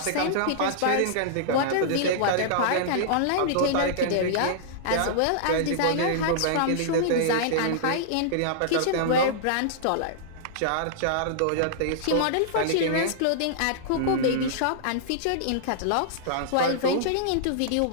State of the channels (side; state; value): both; different; correlation -0.02